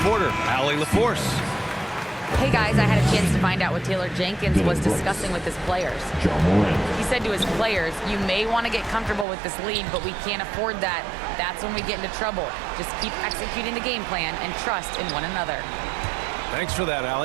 Allie LaForce. Hey guys, I had a chance to find out what Taylor Jenkins was discussing with his players. He said to his players, you may want to get comfortable with this lead, but we can't afford that. That's when we get into trouble. Just keep executing the game plan and trust in one another. Thanks for that,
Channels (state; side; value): drops out; left; at 9.2 s